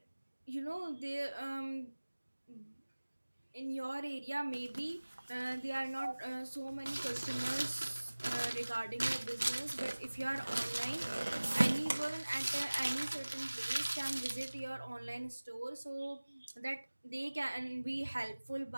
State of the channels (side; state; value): both; inverted; correlation -1.00